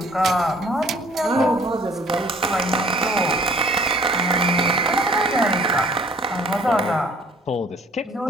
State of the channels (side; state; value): both; normal; correlation 0.55